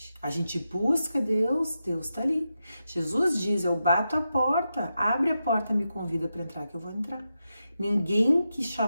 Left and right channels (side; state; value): both; inverted; correlation -0.88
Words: A gente busca Deus, Deus está ali. Jesus diz, eu bato a porta, abre a porta, me convida para entrar que eu vou entrar. Ninguém que